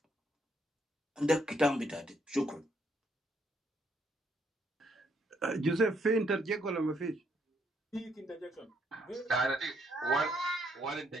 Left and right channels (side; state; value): both; normal; correlation 0.72